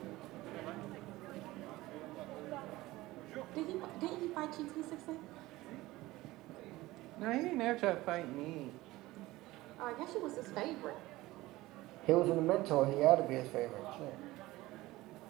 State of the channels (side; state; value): left; quieter; 18.5 dB